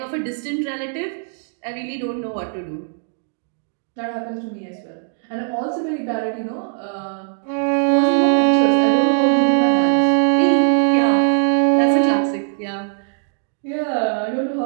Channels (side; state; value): left; silent; digital silence